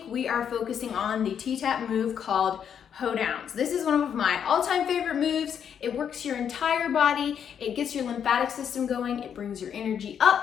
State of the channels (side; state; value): right; quieter; 8.2 dB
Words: we are focusing on the T-Tapp move called Hoedowns. This is one of my all-time favorite moves. It works your entire body, it gets your lymphatic system going, it brings your energy